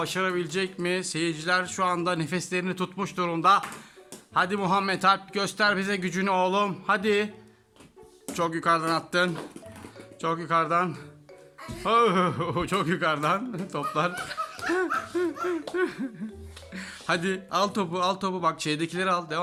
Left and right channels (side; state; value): both; identical; correlation 1.00